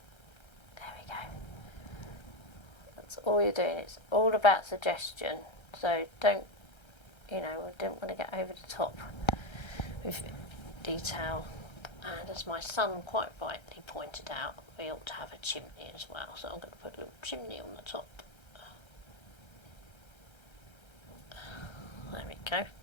There we go. That's all you're doing. It's all about suggestion. So don't, we don't want to get over the top with detail. And as my son quite rightly pointed out, we ought to have a chimney as well. So I'm going to put a little chimney on the top. There we go.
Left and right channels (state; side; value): late; right; 1.3 ms